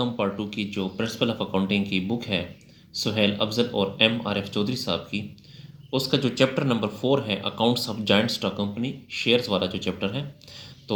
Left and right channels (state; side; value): identical; both; correlation 1.00